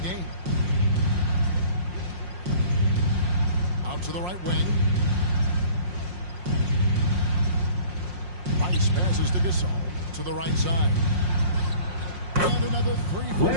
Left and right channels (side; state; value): left; late; 5.6 ms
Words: Out to the right wing. Rice passes to Gasol to the right side. And another 3 for